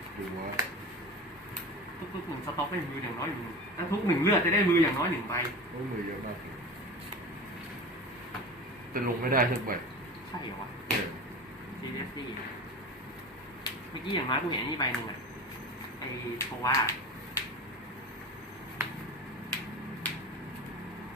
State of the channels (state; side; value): normal; both; correlation 0.31